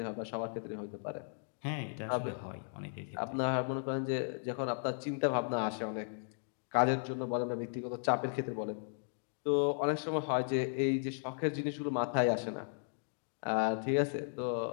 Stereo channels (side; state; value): right; silent; digital silence